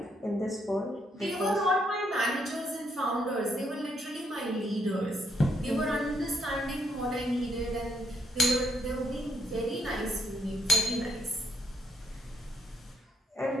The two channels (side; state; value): both; normal; correlation 0.72